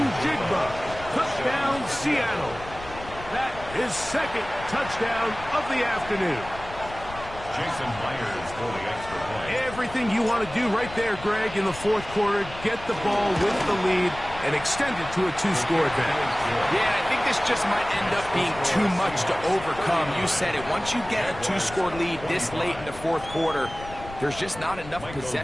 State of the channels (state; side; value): noise; left; rumble, 15 dB below the sound